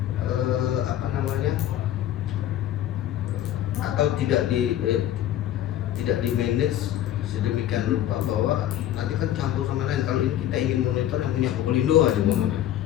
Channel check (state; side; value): quieter; right; 12.0 dB